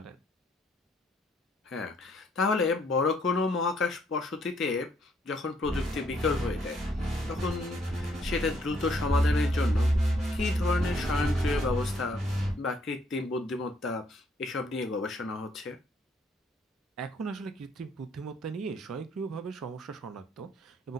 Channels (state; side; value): normal; both; correlation 0.68